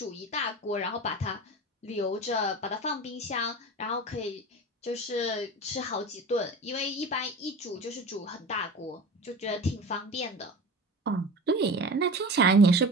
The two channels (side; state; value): both; normal; correlation 0.33